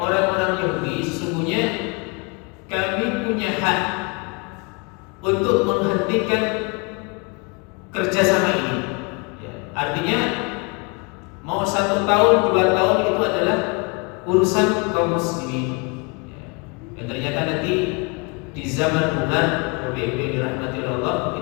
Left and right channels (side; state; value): right; quieter; 31.1 dB